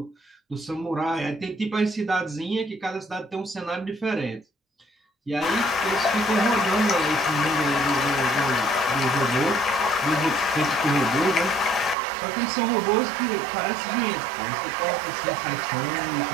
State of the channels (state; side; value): drops out; left; at 12.0 s